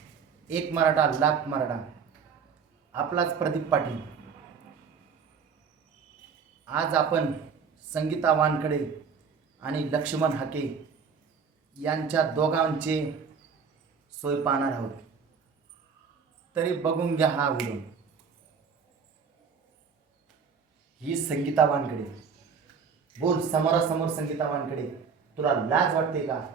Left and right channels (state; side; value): quieter; left; 6.1 dB